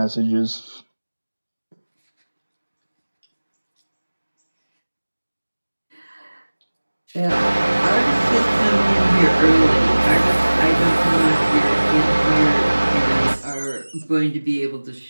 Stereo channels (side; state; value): both; inverted; correlation -1.00